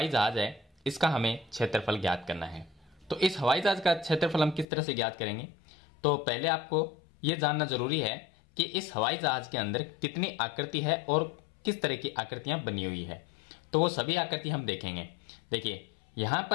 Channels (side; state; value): right; drops out; at 4.7 s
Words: जहाज है इसका हमें क्षेत्रफल ज्ञात करना है। तो इस हवाई जहाज का क्षेत्रफल हम किस तरह से ज्ञात करेंगे? तो पहले आपको यह जानना जरूरी है कि इस हवाई जहाज के अंदर कितनी आकृति है और किस तरह की आकृतियां बनी हुई है। तो वो सभी आकृति हम देखेंगे। देखिए यहां